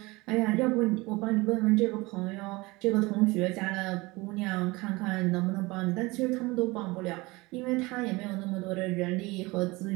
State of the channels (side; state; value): left; quieter; 23.0 dB